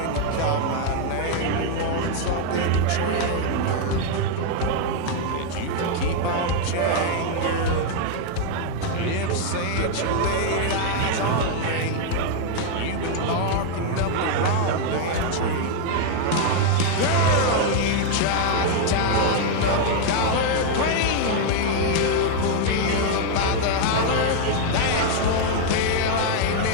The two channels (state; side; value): different; both; correlation 0.00